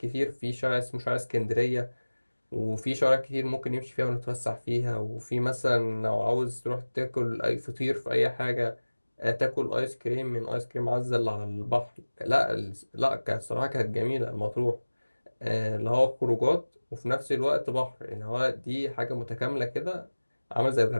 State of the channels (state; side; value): inverted; both; correlation -1.00